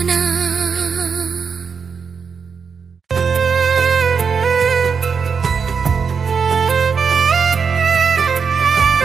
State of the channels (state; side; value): quieter; left; 5.9 dB